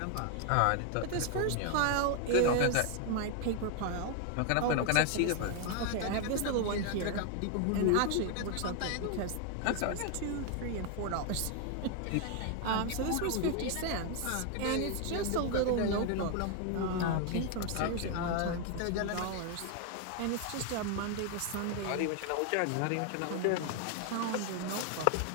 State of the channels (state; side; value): different; both; correlation 0.00